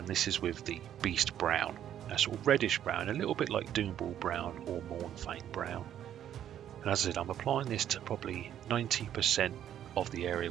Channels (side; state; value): left; quieter; 10.5 dB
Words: this is with the Beast Brown, a sort of reddish brown, a little bit like Doomball Brown or Mournfang Brown. And as I said, I'm applying this to probably 90% of the